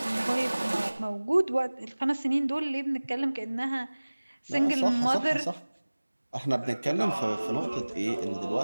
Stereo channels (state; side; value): inverted; both; correlation -1.00